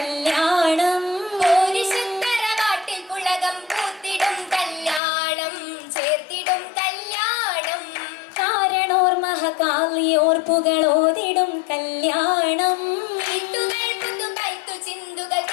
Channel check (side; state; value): right; drops out; at 5.0 s